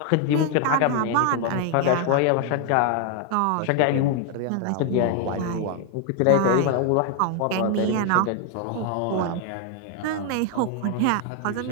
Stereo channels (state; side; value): different; both; correlation 0.01